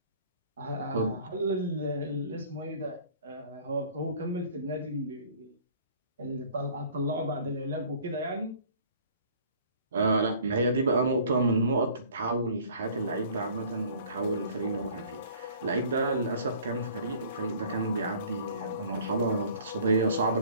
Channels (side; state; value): both; inverted; correlation -0.51